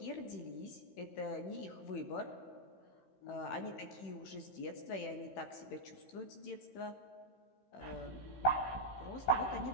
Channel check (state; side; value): late; right; 16 ms